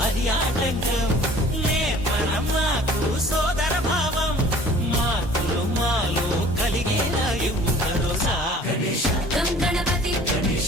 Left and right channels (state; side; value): normal; both; correlation 0.49